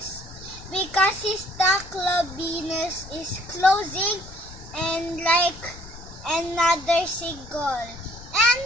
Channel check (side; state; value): left; noise; rumble, 17 dB below the sound